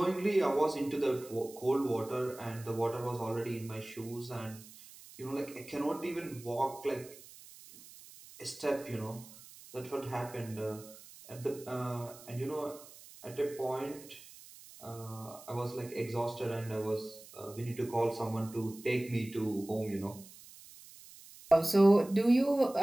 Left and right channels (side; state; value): right; noise; hiss, 19 dB below the sound